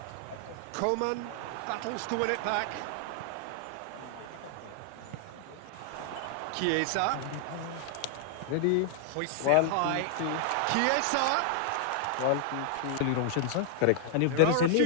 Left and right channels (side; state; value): both; different; correlation 0.00